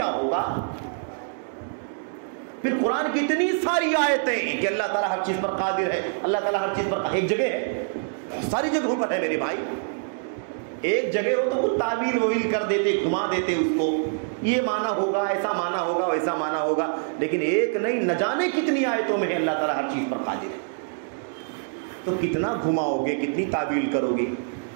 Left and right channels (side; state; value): left; silent; digital silence